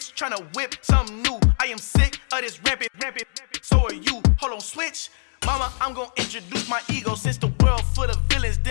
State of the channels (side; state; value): right; silent; 63 dB below the other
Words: tryna whip something new. I am sick of this rampant. So are you. Hold on, switch. Mama, I'm gonna introduce my ego. Since the world full of villains,